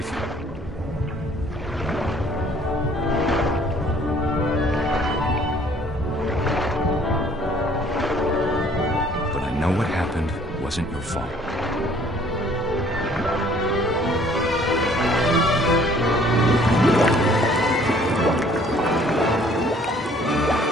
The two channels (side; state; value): both; normal; correlation 0.58